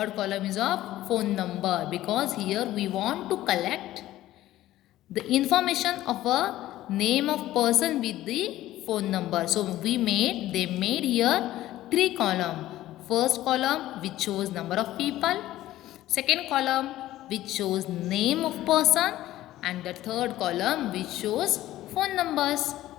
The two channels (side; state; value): right; quieter; 14.8 dB